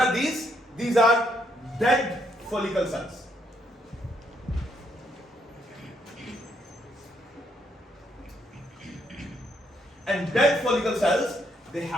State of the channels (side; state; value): both; normal; correlation 0.73